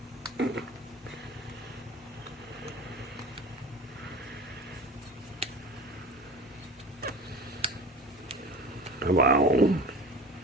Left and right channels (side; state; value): both; normal; correlation 0.36